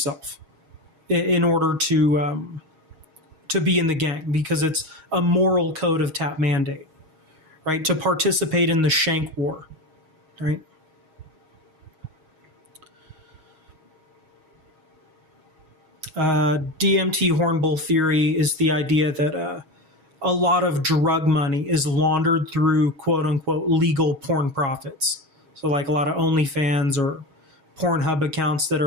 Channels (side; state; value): left; late; 6.4 ms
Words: in order to be in the gang, because it's a moral code of tat mandate. Right, to participate in the Shank War, right? DMT Hornbull theory is the idea that a lot of drug money is laundered through quote-unquote legal porn profits. So like a lot of OnlyFans or Pornhub accounts that